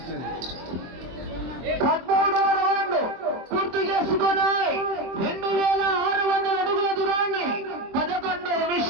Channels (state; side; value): late; left; 23 ms